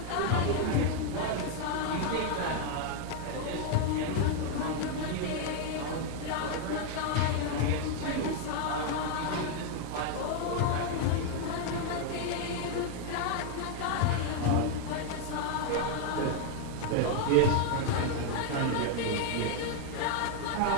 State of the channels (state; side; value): different; both; correlation 0.00